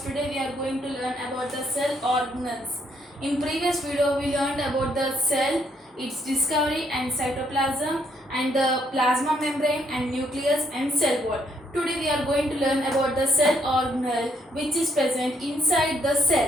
today we are going to learn about the cell organelles. In previous video we learned about the cell, its discovery and cytoplasm and the plasma membrane and nucleus and cell wall. Today we are going to learn about the cell organelle which is present inside the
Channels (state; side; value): normal; both; correlation 0.71